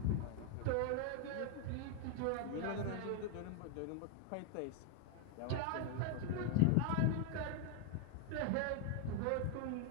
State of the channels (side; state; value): both; different; correlation 0.00